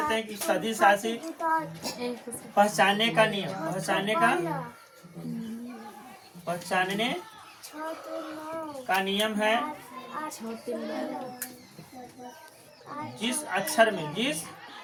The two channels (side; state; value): both; identical; correlation 1.00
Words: हैं कि सदिश राशि पहचानने का नियम है। जिस अक्षर